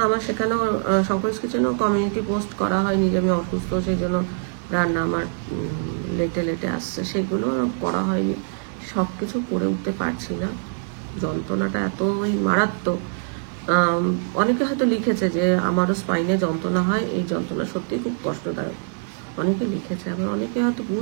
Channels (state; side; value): silent; left; digital silence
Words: আমার সেখানেও শঙ্করস কিচেনেও কমিউনিটি পোস্ট করা হয়নি যে আমি অসুস্থ, সেই জন্য রান্না আমার লেটে লেটে আসছে, সেগুলো করা হয়নি। সব কিছু করে উঠতে পারছি না, যন্ত্রণাটা এতই মারাত্মক। অনেকে হয়তো লিখেছে যে আমারও স্পাইনে যন্ত্রণা হয়, এই যন্ত্রণা সত্যিই খুব কষ্টদায়ক, অনেকে লিখেছে। আবার অনেকে হয়তো